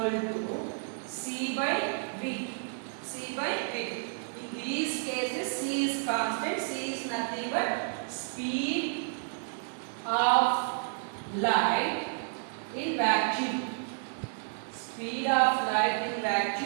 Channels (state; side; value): silent; left; digital silence